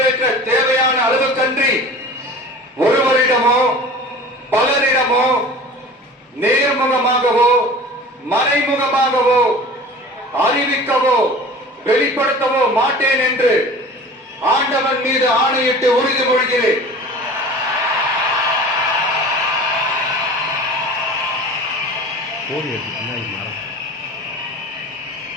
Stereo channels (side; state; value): both; normal; correlation 0.40